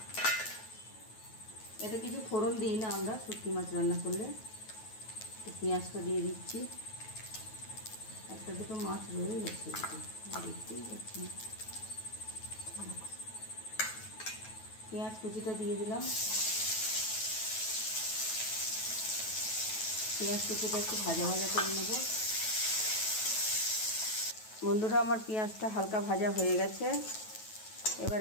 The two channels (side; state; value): right; late; 9.2 ms